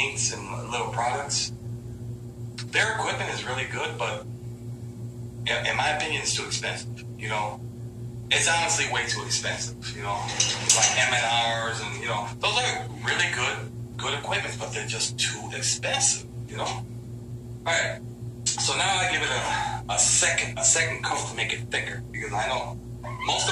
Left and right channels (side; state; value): both; identical; correlation 1.00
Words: and little products. Their equipment is really good, but in my opinion, it's too expensive. It's honestly way too expensive. It's like M&Rs and those are really good equipment, but they're just too expensive. All right. So now I give it a second coat to make it thicker, because I know most